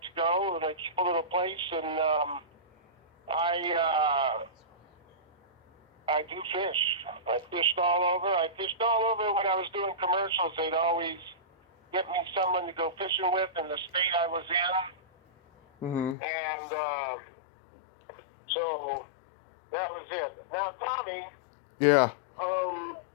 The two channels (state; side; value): drops out; right; at 16.2 s